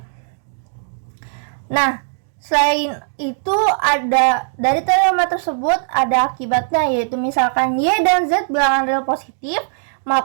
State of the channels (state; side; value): silent; left; digital silence